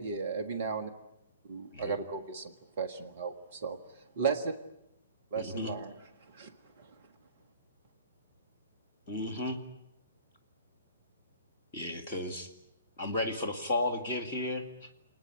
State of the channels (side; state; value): both; inverted; correlation -0.46